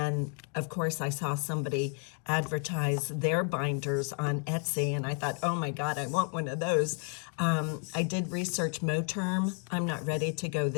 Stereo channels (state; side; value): quieter; right; 36.5 dB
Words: of course, I saw somebody advertise their binders on Etsy, and I thought, oh my God, I want one of those. I did research Moterm. I'm not ready to go